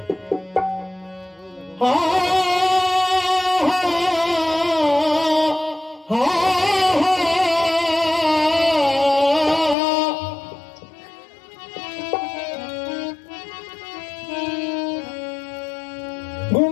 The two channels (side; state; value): right; drops out; at 9.8 s